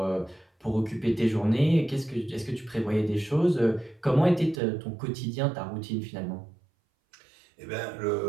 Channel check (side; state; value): left; drops out; at 4.6 s